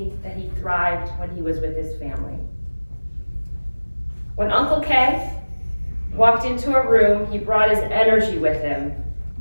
that he thrived when he was with his family. When Uncle Kay walked into a room, he brought his energy with him,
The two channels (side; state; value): both; inverted; correlation -1.00